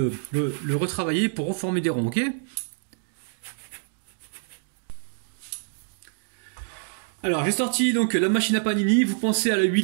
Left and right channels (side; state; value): left; silent; digital silence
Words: retravailler pour reformer des ronds, ok? Alors j'ai sorti donc la machine à panini, vous pensez à la